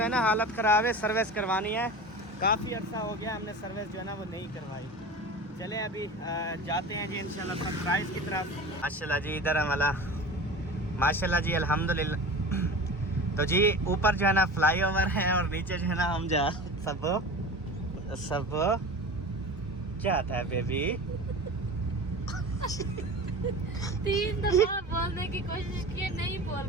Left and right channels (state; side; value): normal; both; correlation 0.33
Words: ना हालत ख़राब है, सर्विस करवानी है। काफ़ी अर्सा हो गया हमने सर्विस जो है ना वो नहीं करवाई। चलें अभी जाते हैं जी इंशाल्लाह सरप्राइज़ की तरफ। माशाल्लाह जी इधर हमारा माशाल्लाह जी अल्हम्दुलिल्लाह। तो जी ऊपर जो है ना फ्लाईओवर है और नीचे जो है ना हम जा सब क्या था बेबी? 3 दफा बोलने की कोशिश की, नहीं बोल